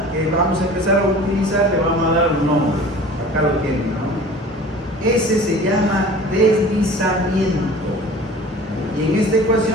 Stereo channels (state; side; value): normal; both; correlation 0.43